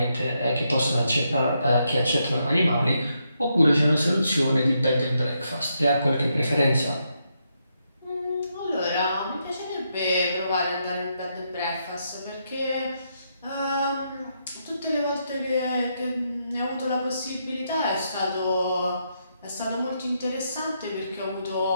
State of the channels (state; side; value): inverted; both; correlation -0.80